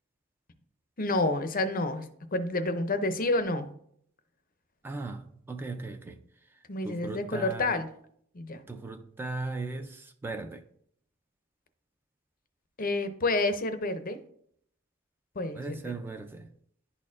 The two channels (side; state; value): both; normal; correlation 0.18